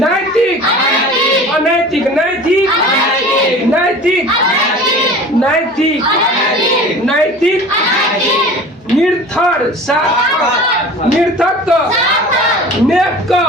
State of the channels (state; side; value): normal; both; correlation 0.41